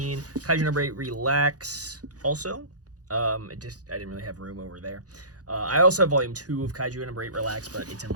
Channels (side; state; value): left; late; 0.67 ms